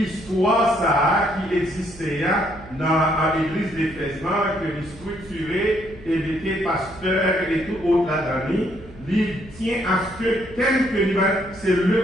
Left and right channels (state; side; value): noise; right; hum, 19 dB below the sound